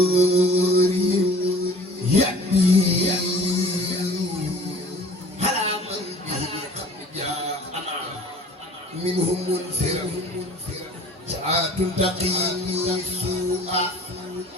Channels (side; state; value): both; normal; correlation 0.47